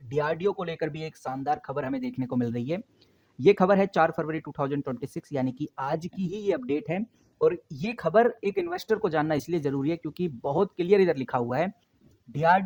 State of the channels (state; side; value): identical; both; correlation 1.00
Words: डीआरडीओ को लेकर भी एक शानदार खबर हमें देखने को मिल रही है। ये खबर है 4 फरवरी 2026 यानी कि आज की ही ये अपडेट है। और ये खबर एक इन्वेस्टर को जानना इसलिए जरूरी है क्योंकि बहुत क्लियर इधर लिखा हुआ है,